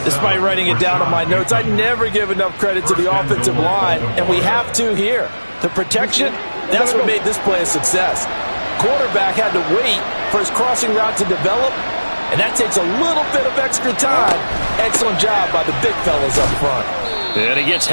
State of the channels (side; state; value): both; inverted; correlation -1.00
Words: Despite writing it down on my notes, I never give enough credit to the offensive line, and we have to here. The protection, that's what made this play a success. Quarterback had to wait for his crossing route to develop, and that takes a little bit of extra time. Excellent job by the big fellas up front. And he gets